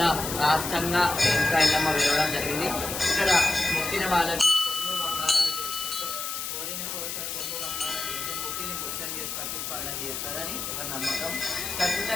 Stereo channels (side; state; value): left; noise; hiss, 5 dB below the sound